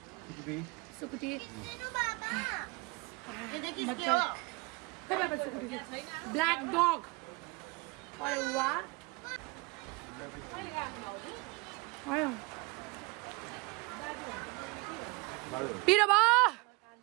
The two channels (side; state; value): left; quieter; 26.8 dB